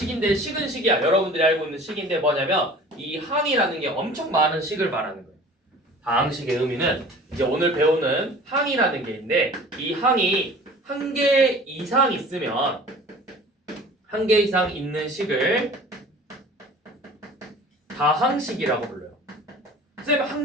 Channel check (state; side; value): normal; both; correlation 0.44